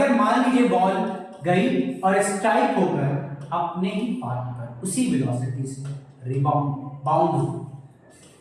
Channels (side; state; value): both; identical; correlation 1.00